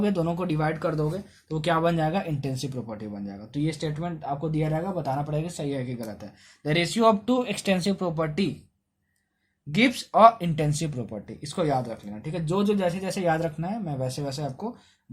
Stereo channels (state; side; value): identical; both; correlation 1.00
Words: दोनों को डिवाइड कर दोगे, तो वो क्या बन जाएगा? इंटेंसिव प्रॉपर्टी बन जाएगा। तो ये स्टेटमेंट आपको दिया जाएगा, बताना पड़ेगा सही है कि गलत है। The ratio of two extensive property gives a intensive property, इसको याद रख लेना, ठीक है। जो जो जैसे जैसे याद रखना है मैं वैसे वैसे आपको